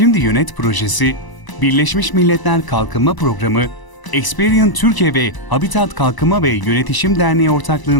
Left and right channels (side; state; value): right; late; 1.0 ms